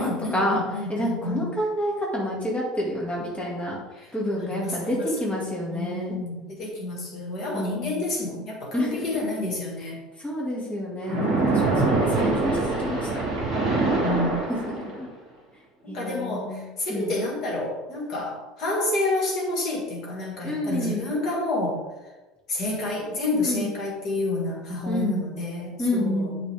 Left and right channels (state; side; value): normal; both; correlation 0.44